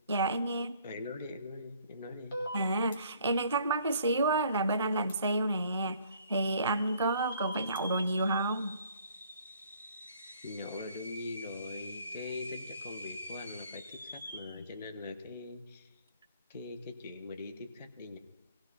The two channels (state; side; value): inverted; both; correlation -0.59